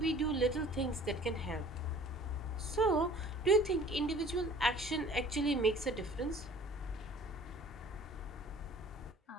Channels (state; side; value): normal; both; correlation 0.49